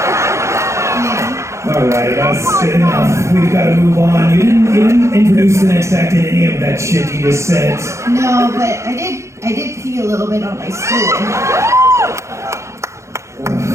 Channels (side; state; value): left; late; 0.14 ms